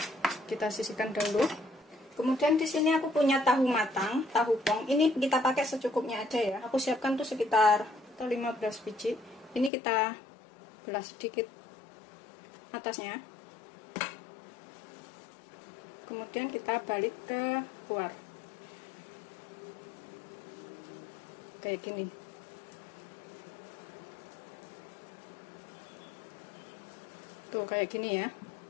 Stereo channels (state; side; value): drops out; right; at 9.7 s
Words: kita sisihkan dahulu. Kemudian di sini aku punya tahu matang, tahu pong. Ini kita pakai secukupnya aja ya. Aku siapkan tuh sekitar 15 biji. Ini kita belah sedikit atasnya. Kemudian kita balik ke luar. Kayak gini. Tuh kayak gini ya.